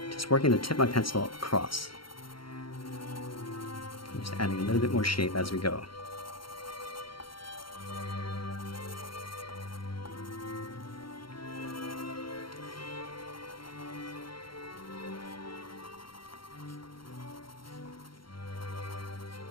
Just working the tip of my pencil across. I'm just adding a little bit more shape as we go.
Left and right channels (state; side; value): late; right; 0.73 ms